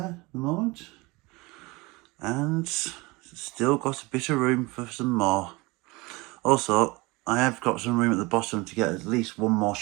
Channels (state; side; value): quieter; left; 24.0 dB